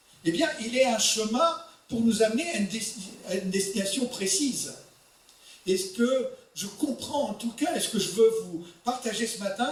Eh bien, il est un chemin pour nous amener à une destination précise. Et ce que je comprends en tout cas, et ce que je veux vous partager ce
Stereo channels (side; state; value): both; identical; correlation 1.00